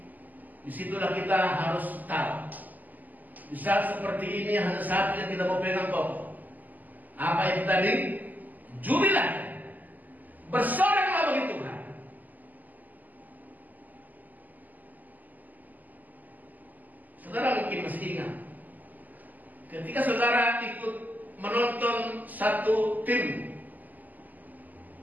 disitulah kita harus tahu. Di saat seperti ini hanya satu yang kita mau pegang kokoh. Apa itu tadi? Jubilah, bersoraklah bagi Tuhan. Saudara mungkin masih ingat, ketika saudara ikut menonton satu tim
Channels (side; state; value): left; late; 0.082 ms